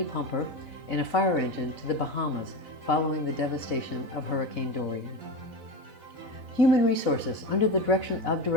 pumper and a fire engine to the Bahamas following the devastation of Hurricane Dorian. Human Resources, under the direction of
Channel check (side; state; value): left; late; 4.0 ms